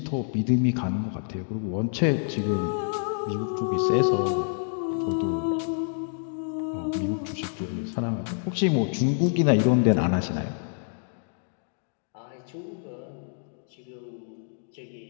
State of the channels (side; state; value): right; silent; digital silence